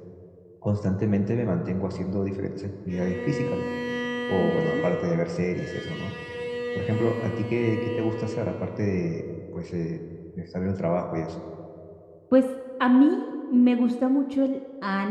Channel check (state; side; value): identical; both; correlation 1.00